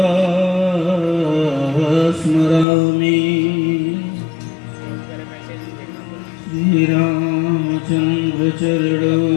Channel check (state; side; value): drops out; right; at 2.7 s